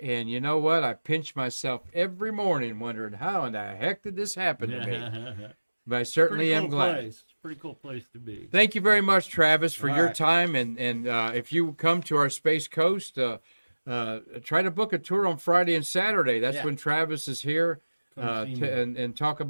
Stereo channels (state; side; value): inverted; both; correlation -1.00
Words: And you know what? I pinch myself every morning wondering how in the heck did this happen to me? But I certainly am glad. It's a pretty cool place to be. Thank you very much, Travis, for your right. time. And if you come to our Space Coast, try to book a tour on Friday and Saturday. That's when Travis is here and talk